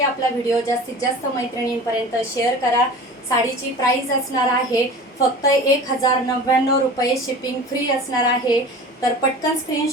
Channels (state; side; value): normal; both; correlation 0.38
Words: आपला व्हिडिओ जास्तीत जास्त मैत्रिणींपर्यंत शेअर करा। साडीची प्राइस असणार आहे फक्त 1099 रुपये, शिपिंग फ्री असणार आहे। तर पटकन